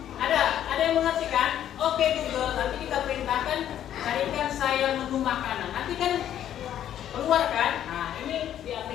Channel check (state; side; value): quieter; right; 10.8 dB